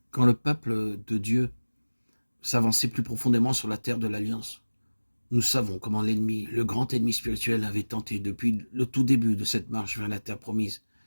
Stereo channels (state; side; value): inverted; both; correlation -1.00